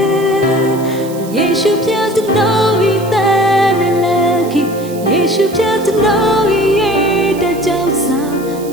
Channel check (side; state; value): right; noise; hiss, 18 dB below the sound